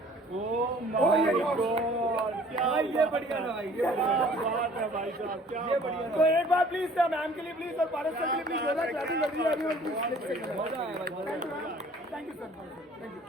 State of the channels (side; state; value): both; normal; correlation 0.53